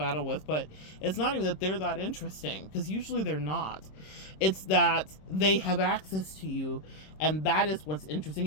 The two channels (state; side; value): late; right; 26 ms